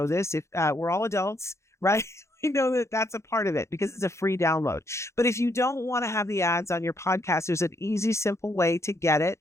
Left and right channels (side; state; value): right; late; 0.14 ms